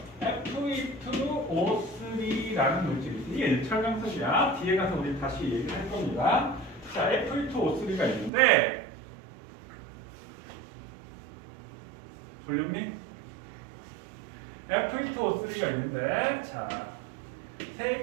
Fe2O3라는 물질이 있어요. 이게 철강석이야. 뒤에 가서 우리 다시 얘기를 할 겁니다. 자, Fe2O3가 있는데 볼륨님? Fe2O3가 있는데 자,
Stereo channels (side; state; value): left; drops out; at 8.3 s